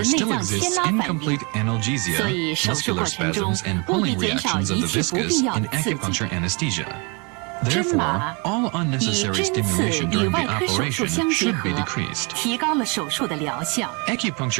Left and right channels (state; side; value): quieter; left; 31.4 dB